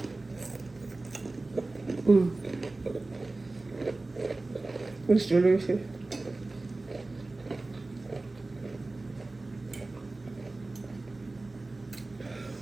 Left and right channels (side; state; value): left; quieter; 3.2 dB